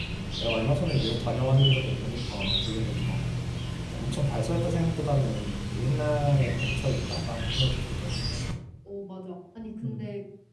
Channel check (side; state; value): both; identical; correlation 1.00